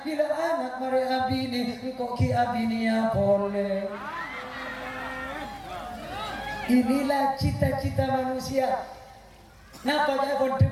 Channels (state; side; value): identical; both; correlation 1.00